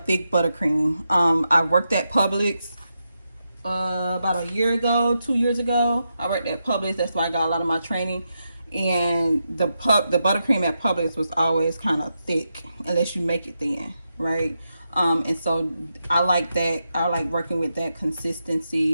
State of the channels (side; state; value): both; inverted; correlation -0.86